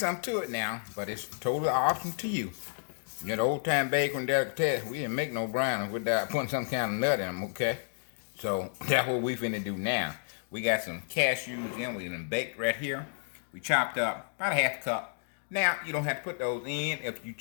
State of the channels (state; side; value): silent; right; digital silence